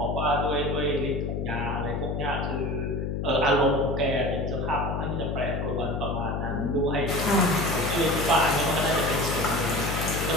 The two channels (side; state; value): left; noise; hum, 2 dB below the sound